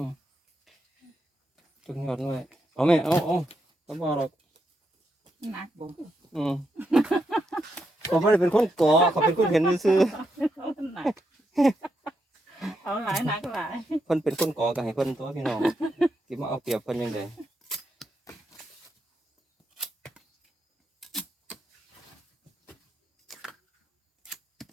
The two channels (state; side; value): normal; both; correlation 0.82